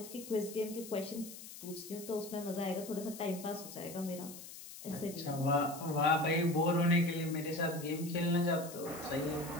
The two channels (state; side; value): noise; left; hiss, 13 dB below the sound